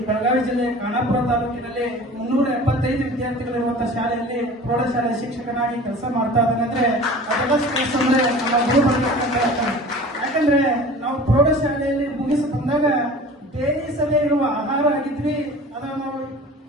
ಬೆಳಗಾವಿ ಜಿಲ್ಲೆ ಖಾನಾಪುರ ತಾಲೂಕಿನಲ್ಲಿ 375 ವಿದ್ಯಾರ್ಥಿಗಳಿರುವಂತಹ ಶಾಲೆಯಲ್ಲಿ ಪ್ರೌಢಶಾಲೆ ಶಿಕ್ಷಕನಾಗಿ ಕೆಲಸ ಮಾಡ್ತಾ ಇದ್ದೇನೆ. ಅಂದ್ರೆ ನಮ್ಮ ಗುರು ಯಾಕಂದ್ರೆ ನಾವು ಪ್ರೌಢಶಾಲೆಯಲ್ಲಿ ಮುಗಿಸಿ ಬಂದಾಗ ಬೇಯಿಸದೇ ಇರುವ ಆಹಾರ ಆಗಿದ್ವಿ. ಅದನ್ನು ನಾವು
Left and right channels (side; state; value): both; normal; correlation 0.41